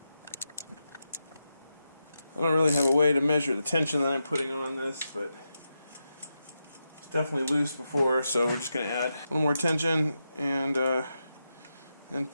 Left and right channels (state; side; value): inverted; both; correlation -0.88